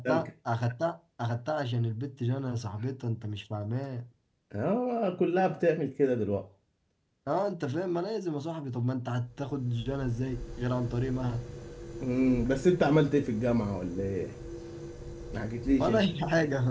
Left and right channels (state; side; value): identical; both; correlation 1.00